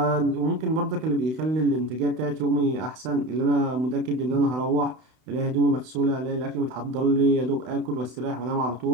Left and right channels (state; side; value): late; left; 32 ms